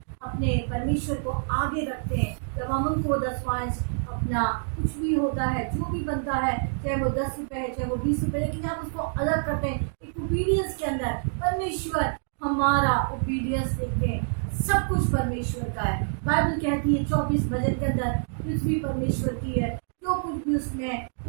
अपने परमेश्वर को आगे रखते हैं। जब हम उनको 10वां अपना कुछ भी होता है, जो भी बनता है, चाहे वो 10 रुपये है, चाहे वो 20 रुपये, लेकिन हम उसको अलग करते हैं एक ओबीडियंस के अंदर। परमेश्वर हमारा ओबीडियंस देखते हैं, सब कुछ परमेश्वर का है। बाइबल कहती है 24 भजन के अंदर, पृथ्वी परमेश्वर की है, जो कुछ भी उसमें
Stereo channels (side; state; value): left; silent; digital silence